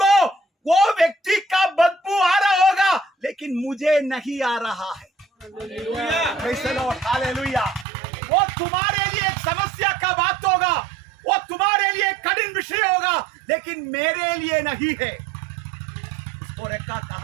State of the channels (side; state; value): left; drops out; at 7.9 s